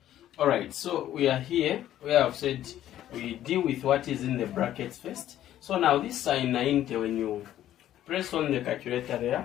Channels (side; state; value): right; quieter; 12.3 dB